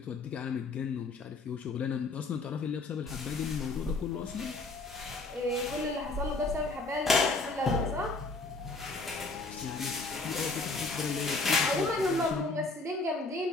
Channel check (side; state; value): right; quieter; 3.5 dB